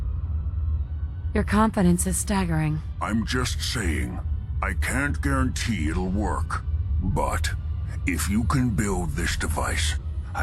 Your confidence is staggering. I'm just saying, I can't guarantee it'll work. But if you can build this device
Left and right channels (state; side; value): identical; both; correlation 1.00